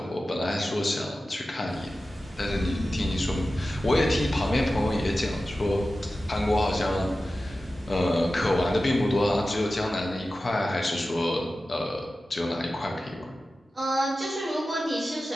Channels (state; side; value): normal; both; correlation 0.94